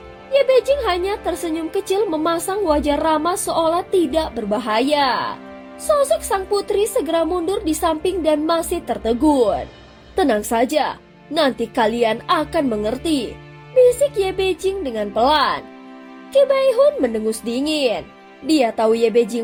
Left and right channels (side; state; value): both; identical; correlation 1.00